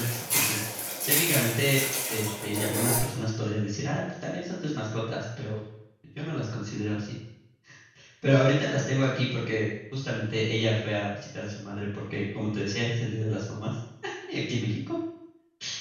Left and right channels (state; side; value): identical; both; correlation 1.00